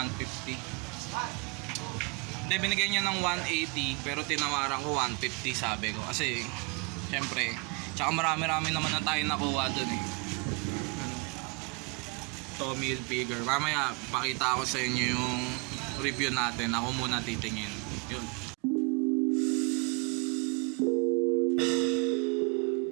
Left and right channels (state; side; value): quieter; left; 30.9 dB